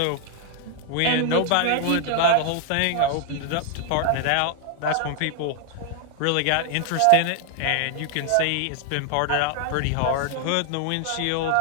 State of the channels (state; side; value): different; both; correlation 0.00